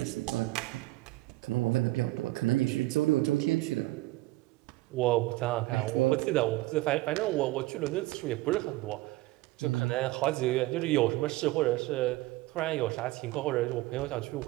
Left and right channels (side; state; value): left; quieter; 19.1 dB